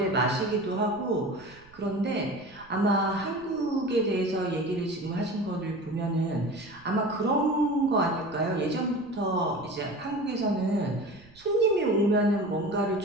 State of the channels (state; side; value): noise; right; rumble, 26 dB below the sound